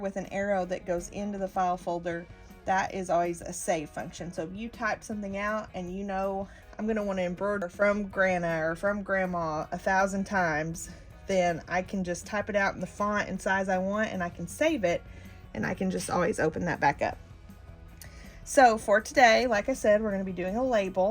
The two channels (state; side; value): identical; both; correlation 1.00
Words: an arrow that goes into the file folder, that is always a save function. So if you type something out and you know I'm going to want to embroider from Grandma or from Grandma 1,000 times, then I can just type it out in the font and size I want and I can save it and I can just always open that back up. So for today, like I said, we're going to be doing a